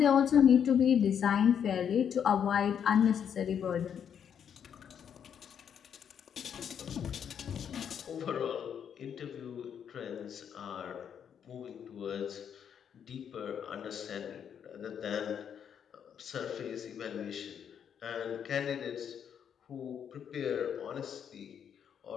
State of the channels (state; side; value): quieter; right; 8.2 dB